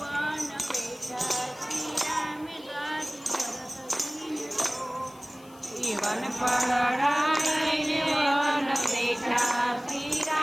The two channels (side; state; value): left; noise; hiss, 25 dB below the sound